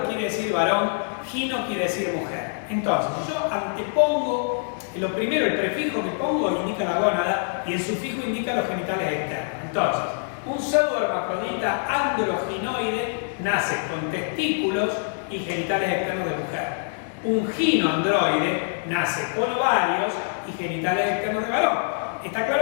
quiere decir varón, gino quiere decir mujer. Entonces, si yo antepongo, lo primero, el prefijo que pongo indica la gónada y el sufijo indica los genitales externos. Entonces, un pseudohermafrodita androginoide nace con testículos y genitales externos de mujer. Un ginoandroide nace con ovarios y genitales externos de varón. Está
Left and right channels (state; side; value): silent; right; digital silence